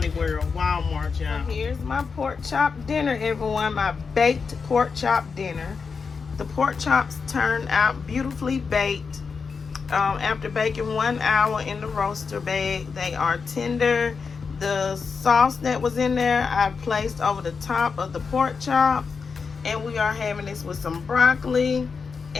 World, Walmart, y'all. Here's my pork chop dinner, everyone. My baked pork chop dinner. The pork chops turned out beautifully baked. After baking 1 hour in the roaster bag, they are tender. The sauce that was in there, I placed over the top of the pork chops. And we are having this with some broccoli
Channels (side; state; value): right; quieter; 5.3 dB